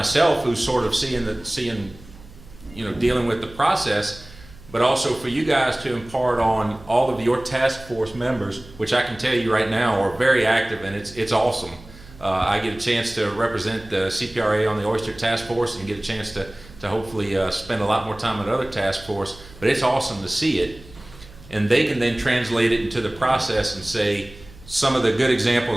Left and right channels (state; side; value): noise; right; hum, 20 dB below the sound